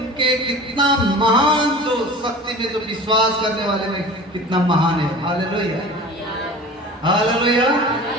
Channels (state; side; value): normal; both; correlation 0.38